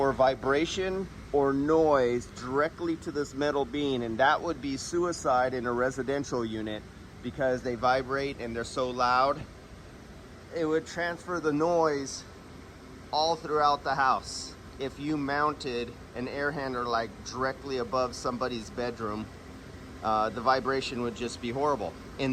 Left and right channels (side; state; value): both; identical; correlation 1.00